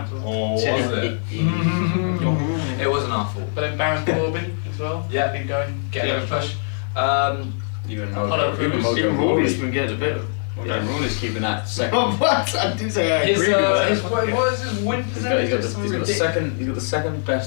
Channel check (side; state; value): right; silent; digital silence